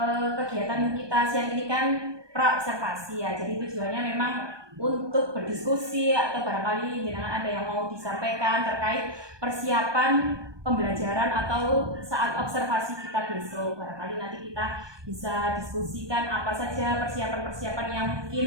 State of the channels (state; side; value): late; left; 1.2 ms